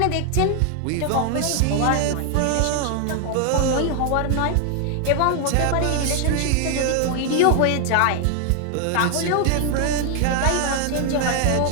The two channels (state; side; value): different; both; correlation 0.00